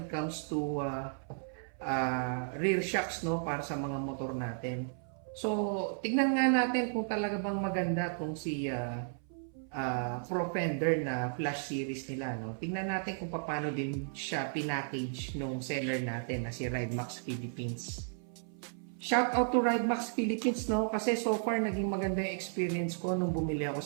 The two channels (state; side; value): silent; left; 55 dB below the other